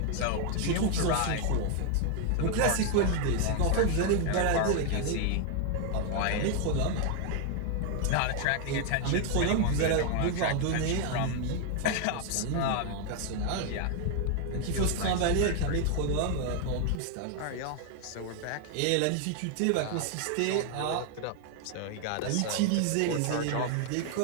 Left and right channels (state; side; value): different; both; correlation 0.00